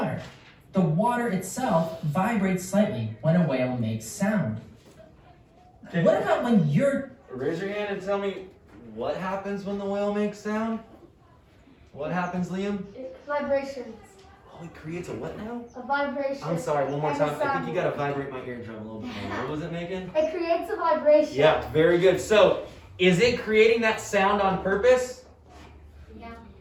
The water itself vibrates slightly when a whale makes sound. Okay. What about when you're... Raise your hand and tell me what happens when the whale makes sound? What happens, Liam? Vibrations. Oh, it creates a what now? A vibration. I'm sorry, one more And time. a I think sound you gotta vibrate my eardrum a little bit more. What was it making? It creates a vibration. Yeah, very good. So, is it creating that sound on purpose? Yeah.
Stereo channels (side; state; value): both; identical; correlation 1.00